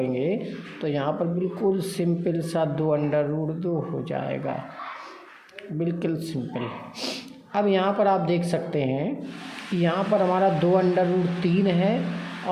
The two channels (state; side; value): identical; both; correlation 1.00